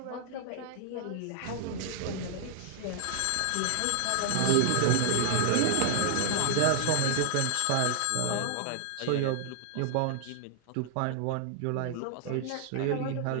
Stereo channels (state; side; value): different; both; correlation 0.00